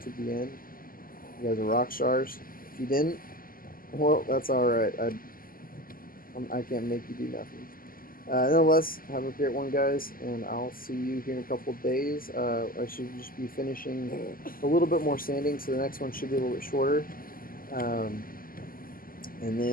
the end, you guys are rock stars. If you didn't, well, that's alright. I can't make you do nothing. Nonetheless, have a great one, guys, and I'll see you here in a couple of days. I should just be finishing a little bit more sanding, so the next one should be a little bit shorter. Um, and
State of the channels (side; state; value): right; late; 0.42 ms